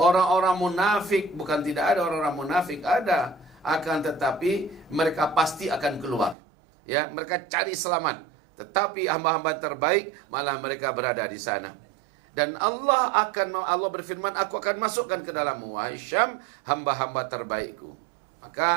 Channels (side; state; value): left; drops out; at 6.4 s